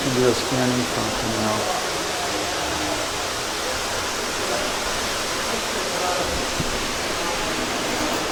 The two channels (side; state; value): both; identical; correlation 1.00